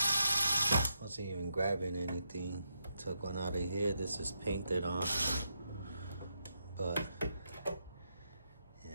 wasn't even grabbing anything. Took one out of here. This is painted on, but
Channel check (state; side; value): inverted; both; correlation -0.82